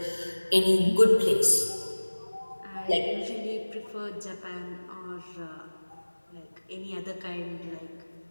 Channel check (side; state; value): both; inverted; correlation -1.00